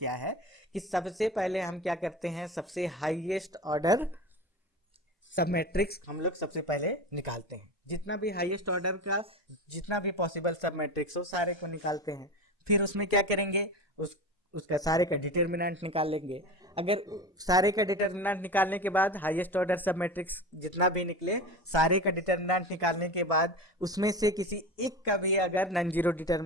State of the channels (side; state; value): both; normal; correlation 0.28